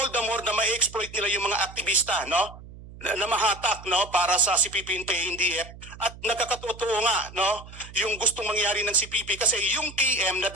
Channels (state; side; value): noise; right; hum, 17 dB below the sound